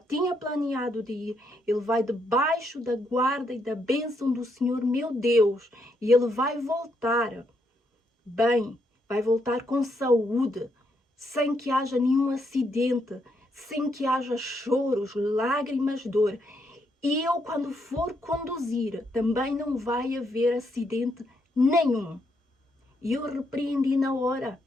planeado de ir. Ele vai debaixo da guarda e da bênção do Senhor, meu Deus. E ele vai voltar bem, vai voltar com saúde, sem que haja nenhum acidente, sem que haja choros, lágrimas, dor. E eu, quando for conduzir, também não vai haver acidente nenhum. E eu repreendi na hora.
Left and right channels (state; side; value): normal; both; correlation 0.77